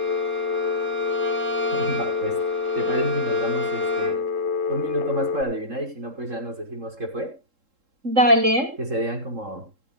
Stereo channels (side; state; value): left; late; 3.7 ms